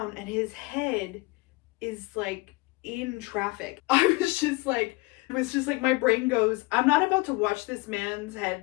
and his head is like in traffic. I was just like, my brain goes, I'm not about to watch this man's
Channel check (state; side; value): quieter; right; 24.0 dB